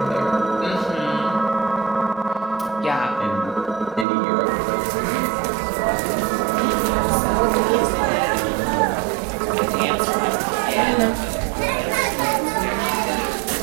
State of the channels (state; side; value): drops out; left; at 4.0 s